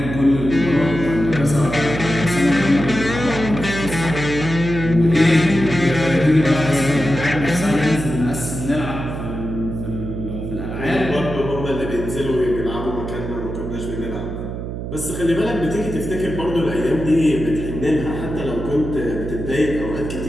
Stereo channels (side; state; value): right; noise; hum, 6 dB below the sound